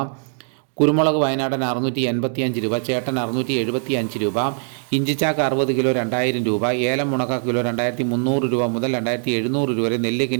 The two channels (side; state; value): left; silent; 65 dB below the other